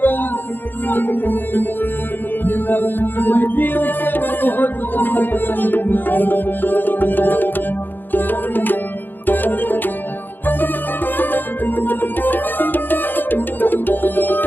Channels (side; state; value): right; late; 0.092 ms